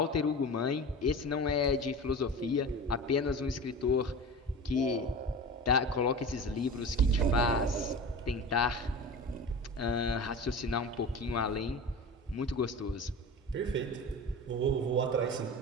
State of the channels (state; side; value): normal; both; correlation 0.33